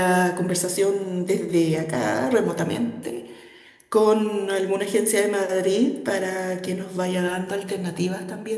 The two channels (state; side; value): identical; both; correlation 1.00